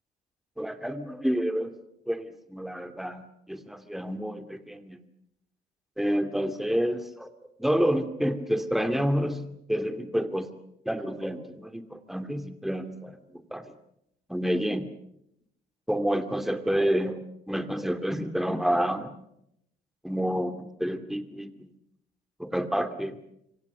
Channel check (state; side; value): normal; both; correlation 0.96